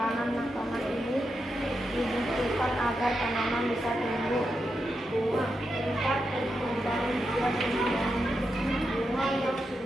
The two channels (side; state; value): both; normal; correlation 0.86